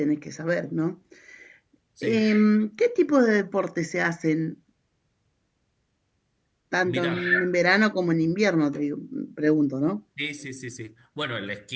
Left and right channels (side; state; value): both; identical; correlation 1.00